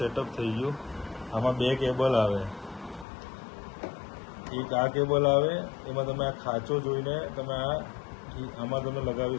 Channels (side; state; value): right; drops out; at 3.1 s